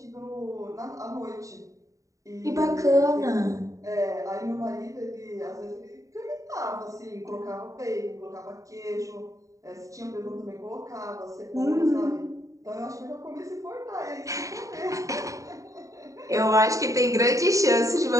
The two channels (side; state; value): left; late; 0.16 ms